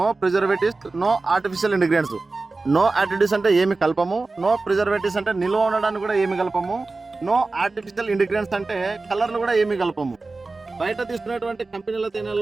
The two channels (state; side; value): quieter; left; 3.6 dB